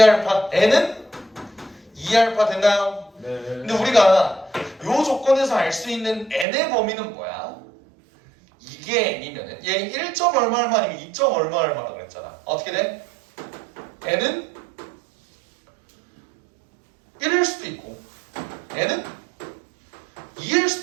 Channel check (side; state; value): left; drops out; at 6.5 s